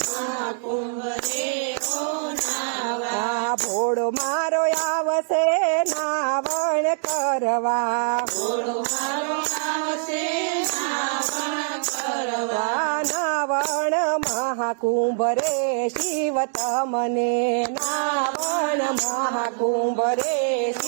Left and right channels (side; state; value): left; silent; digital silence